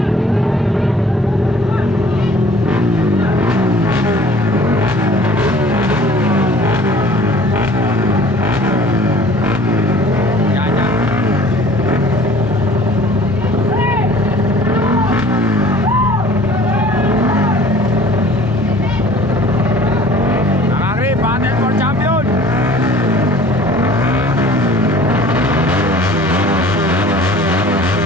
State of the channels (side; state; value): both; normal; correlation 0.50